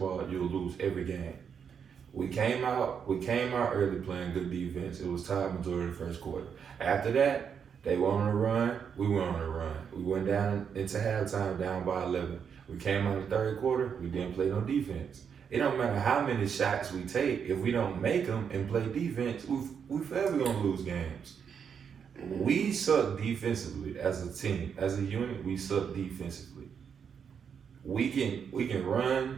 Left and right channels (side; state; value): left; quieter; 7.1 dB